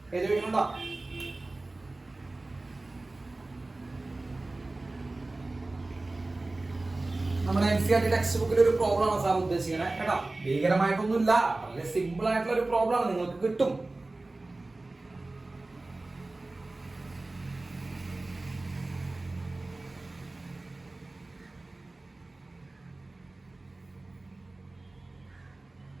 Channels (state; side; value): quieter; left; 3.0 dB